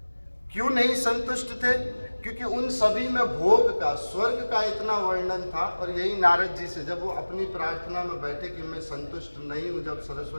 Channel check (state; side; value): inverted; both; correlation -1.00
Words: क्यों नहीं संतुष्ट थे? क्योंकि उन सभी में भोग का, स्वर्ग का इतना वर्णन था। और यही नारद जी से जब वो अपनी प्रार्थना में बैठे कि मैं संतुष्ट नहीं हूँ, जब